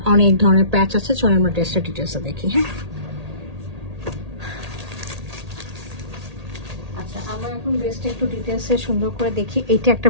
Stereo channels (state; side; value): late; left; 1.8 ms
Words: অনেক ধরনের প্যাচ আছে। চলো আমরা ড্রেসটা ডিটেলসে দেখি। হ্যাঁ, আচ্ছা, আমরা এখন ড্রেসটা একটু ডিটেলসে সুন্দর করে দেখি। এইটা একটা